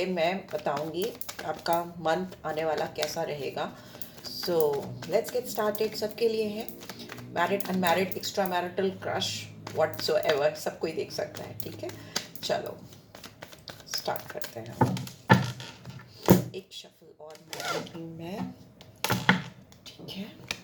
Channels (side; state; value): both; identical; correlation 1.00